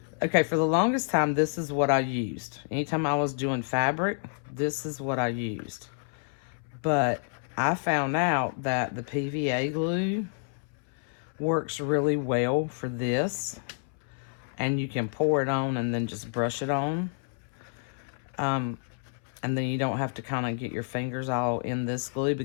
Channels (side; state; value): right; silent; 59 dB below the other